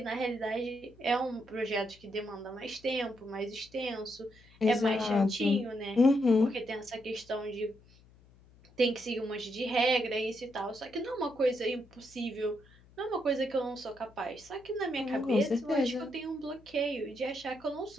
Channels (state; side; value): noise; left; hum, 26 dB below the sound